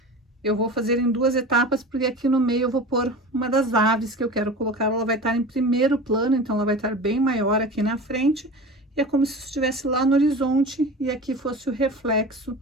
eu vou fazer em duas etapas, porque aqui no meio eu vou pôr uma das aves que eu quero colocar. Ela vai estar em primeiro plano, então ela vai estar bem maior aqui na frente. E é como se estivesse lá no horizonte e aqui fosse o reflexo.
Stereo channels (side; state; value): both; normal; correlation 0.33